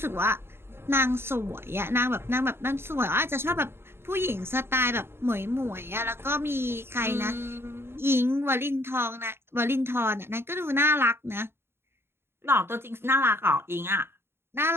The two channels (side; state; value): left; late; 0.11 ms